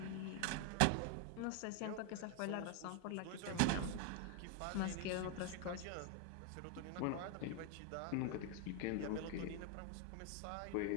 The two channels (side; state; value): both; different; correlation 0.01